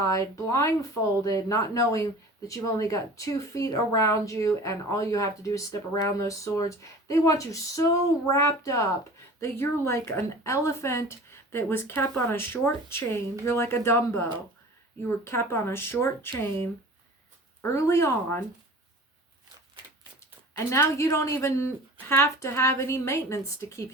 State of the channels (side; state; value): both; normal; correlation 0.41